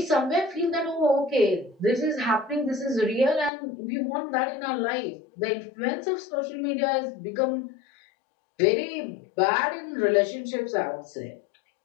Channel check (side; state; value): right; drops out; at 3.5 s